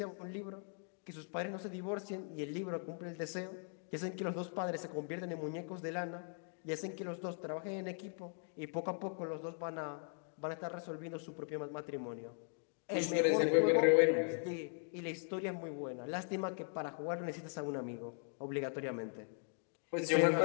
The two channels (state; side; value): silent; right; 51 dB below the other